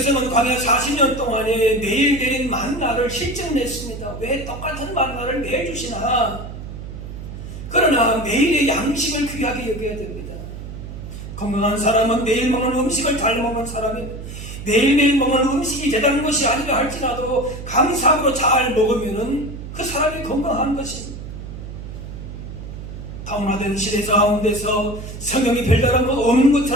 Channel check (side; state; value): right; noise; hum, 10 dB below the sound